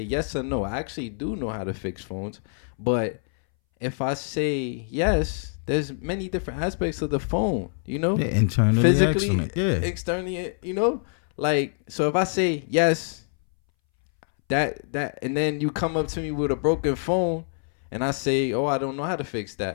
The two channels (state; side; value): silent; right; 61 dB below the other